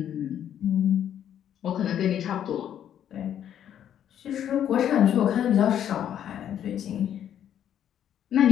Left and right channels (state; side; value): quieter; right; 10.1 dB